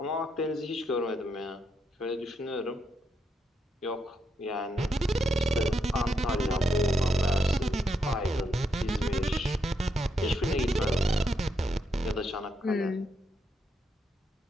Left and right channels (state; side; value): normal; both; correlation 0.80